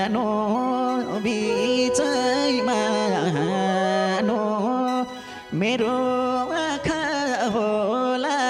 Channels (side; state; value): both; identical; correlation 1.00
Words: नो बिचैमा नो मेरो आँखा होला